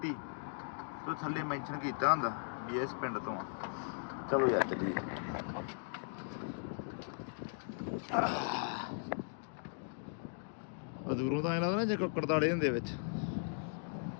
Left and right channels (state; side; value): silent; right; digital silence